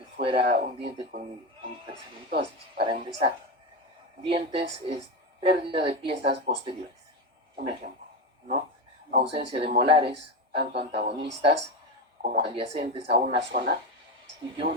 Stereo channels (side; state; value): both; normal; correlation 0.16